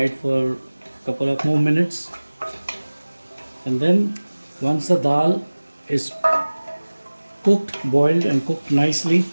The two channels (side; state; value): both; inverted; correlation -1.00